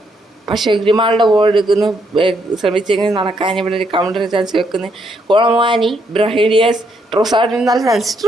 പക്ഷേ ഗ്രിമാൾഡ് ബോൾ എടുക്കുന്നു. ശ്രമിച്ചെങ്കിൽ നടക്കാൻ ഇവിടെ ഒരു കൗണ്ടർ ചാൻസ് വെക്കുന്നു. കോളമാനി ബ്രഹീഡിയസ് ട്രൊസാഡിന് നല്ല chance.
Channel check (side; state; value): both; normal; correlation 0.74